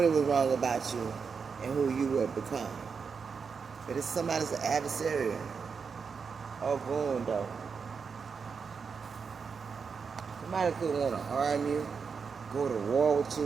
was wrong about you and who you would become. But it's somebody's adversary. Oh, boom, though. Somebody could want to harm you, go to war with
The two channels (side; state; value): left; quieter; 5.7 dB